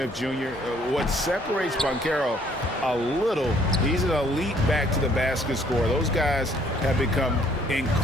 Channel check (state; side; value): normal; both; correlation 0.63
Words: Jr. What separates Banchero a little, he's an elite back-to-the-basket scorer. Those guys have become